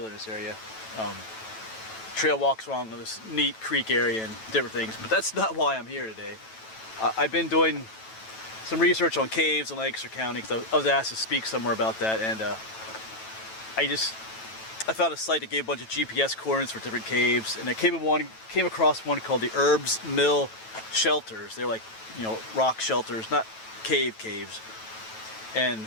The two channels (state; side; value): late; right; 9.1 ms